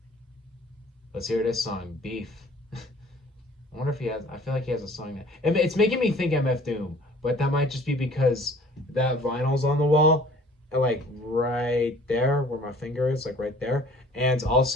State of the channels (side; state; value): both; normal; correlation 0.51